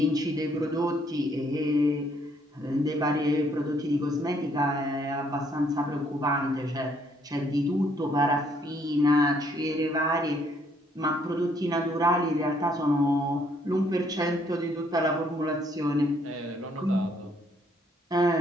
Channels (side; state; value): both; normal; correlation 0.67